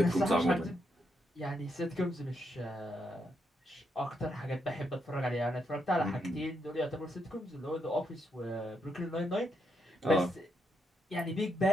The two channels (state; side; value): normal; both; correlation 0.79